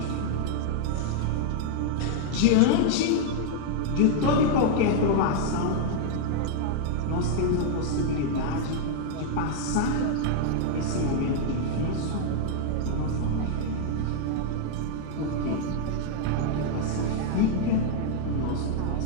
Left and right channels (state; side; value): different; both; correlation -0.01